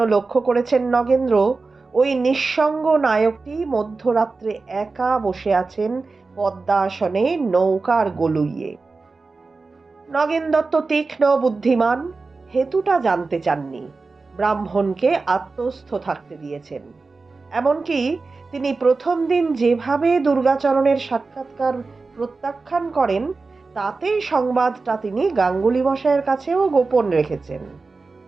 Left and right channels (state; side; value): quieter; left; 3.9 dB